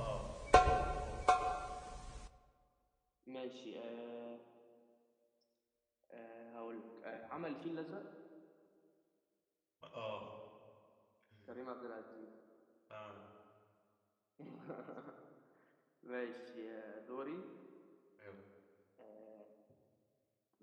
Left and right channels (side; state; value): both; identical; correlation 1.00